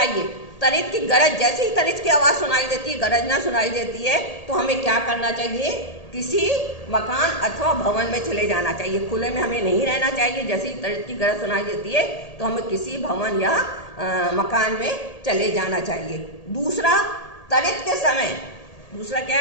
तड़ित की गरज, जैसे ही तड़ित की आवाज सुनाई देती है, गरजना सुनाई देती है, तो हमें क्या करना चाहिए, किसी मकान अथवा भवन में चले जाना चाहिए। खुले में हमें नहीं रहना चाहिए। जैसे ही तड़ित की गरज सुनाई देती है तो हमें किसी भवन या मकान में चले जाना चाहिए। दूसरा, तड़ित के समय, दूसरा क्या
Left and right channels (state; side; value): late; right; 1.8 ms